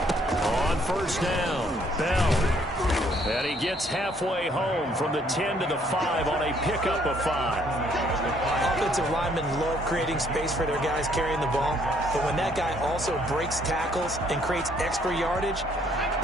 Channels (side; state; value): both; normal; correlation 0.65